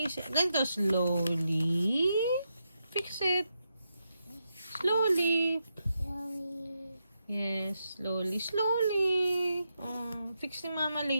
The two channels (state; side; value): inverted; both; correlation -0.84